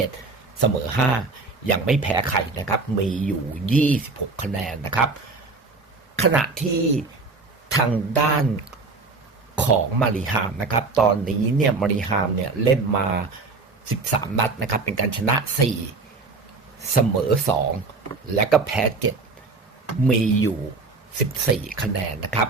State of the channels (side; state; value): left; quieter; 3.9 dB